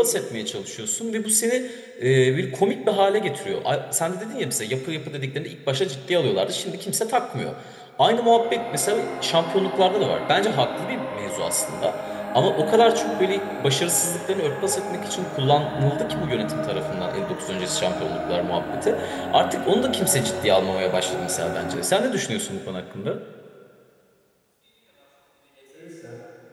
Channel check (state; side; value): identical; both; correlation 1.00